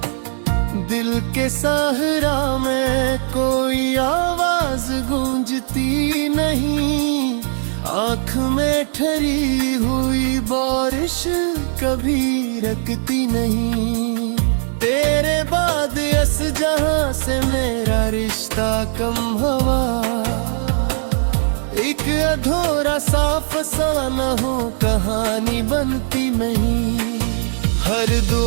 दिल के सहरा में कोई आवाज गूंजती नहीं, आँख में ठहरी हुई बारिश कभी रुकती नहीं। तेरे बाद इस जहां से मेरा रिश्ता कम हवा, एक अधूरा सा फसाना हो कहानी बनती नहीं। हर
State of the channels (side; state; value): left; silent; 66 dB below the other